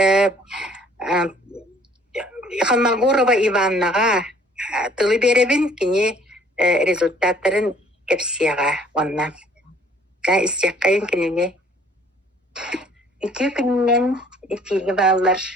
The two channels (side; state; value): both; normal; correlation 0.57